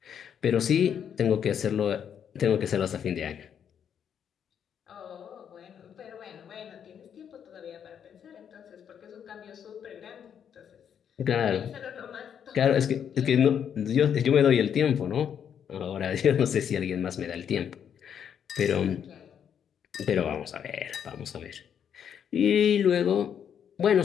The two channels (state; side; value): quieter; right; 8.4 dB